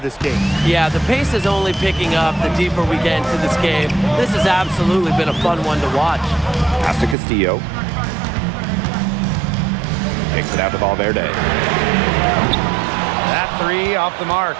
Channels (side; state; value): left; drops out; at 7.2 s